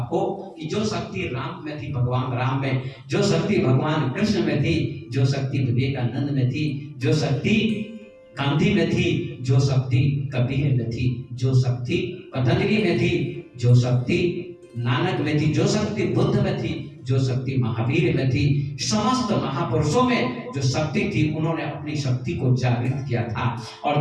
कि जो शक्ति राम में थी, भगवान राम में, जो शक्ति भगवान कृष्ण में थी, जो शक्ति विवेकानंद में थी, जो शक्ति गांधी में थी, जो शक्ति कबीर में थी, जो शक्ति पतंजलि में थी, जो शक्ति नानक में थी, जो शक्ति बुद्ध में थी, जो शक्ति महावीर में थी, समस्त महापुरुषों में जो शक्ति थी, उन्होंने अपनी शक्ति को जागृत किया था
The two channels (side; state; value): both; identical; correlation 1.00